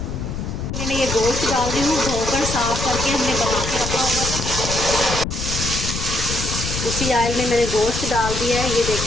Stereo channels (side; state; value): left; noise; rumble, 4 dB below the sound